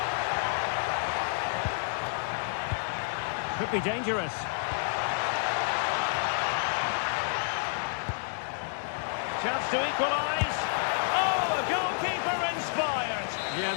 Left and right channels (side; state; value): right; silent; digital silence